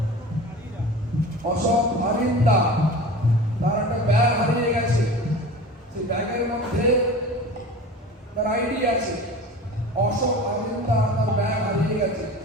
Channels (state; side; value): normal; both; correlation 0.36